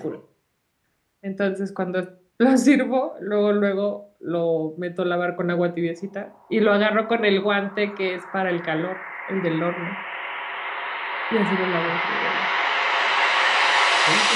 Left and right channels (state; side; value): identical; both; correlation 1.00